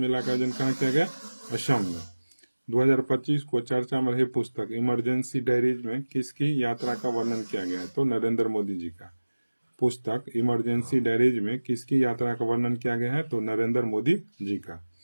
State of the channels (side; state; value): both; inverted; correlation -1.00